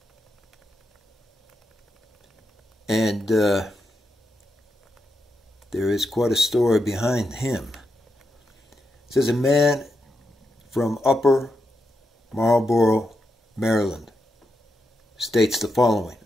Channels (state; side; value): normal; both; correlation 0.85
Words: And there is quite a story behind him. It says a man from Upper Marlboro, Maryland, states the following.